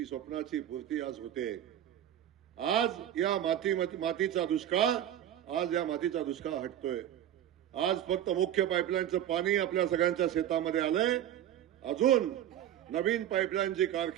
पूर्ती आज होते. आज या मातीचा दुष्काळ हटतोय. आज फक्त मुख्य पाईपलाईनचं पाणी आपल्या सगळ्यांच्या शेतामध्ये आलंय. अजून नवीन पाईपलाईन जी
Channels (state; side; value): quieter; left; 11.2 dB